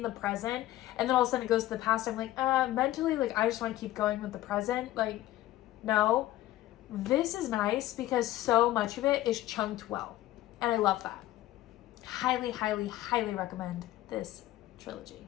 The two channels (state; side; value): quieter; right; 15.2 dB